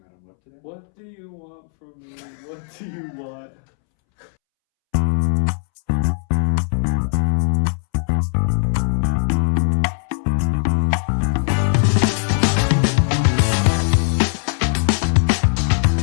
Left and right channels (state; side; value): silent; right; 66 dB below the other